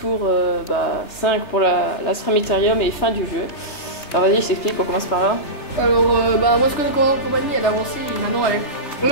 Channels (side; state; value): right; late; 3.4 ms